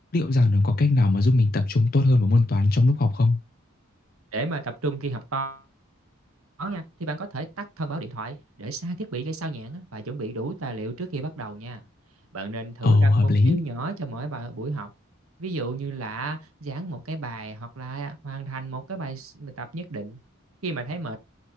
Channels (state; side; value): normal; both; correlation 0.79